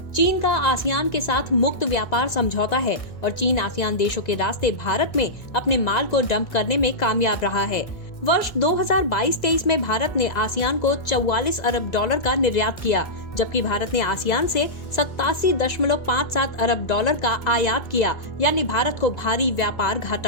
चीन का आसियान के साथ मुक्त व्यापार समझौता है और चीन आसियान देशों के रास्ते भारत में अपने माल को डंप करने में कामयाब रहा है। वर्ष 2022-23 में भारत ने आसियान को 44 अरब डॉलर का निर्यात किया, जबकि भारत ने आसियान से 87.57 अरब डॉलर का आयात किया, यानी भारत को भारी व्यापार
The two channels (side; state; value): right; late; 2.0 ms